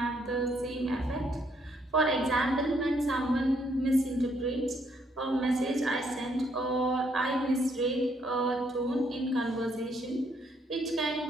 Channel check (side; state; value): both; normal; correlation 0.71